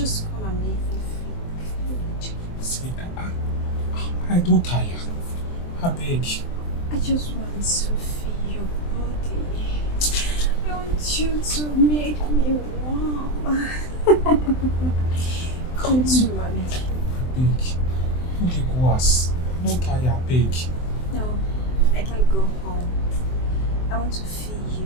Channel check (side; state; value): right; late; 23 ms